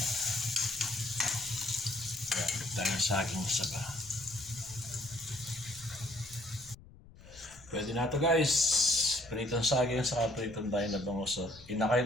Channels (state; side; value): noise; left; rumble, 21 dB below the sound